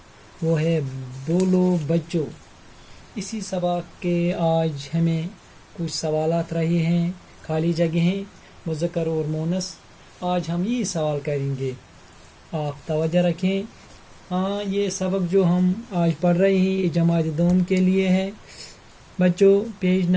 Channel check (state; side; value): identical; both; correlation 1.00